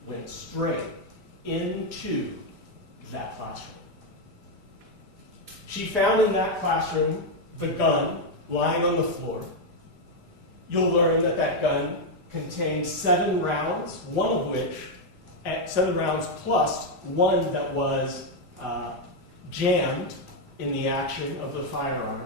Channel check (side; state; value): right; late; 5.0 ms